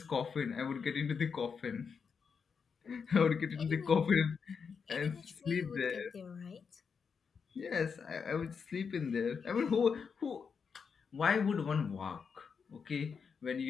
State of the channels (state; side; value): quieter; right; 6.0 dB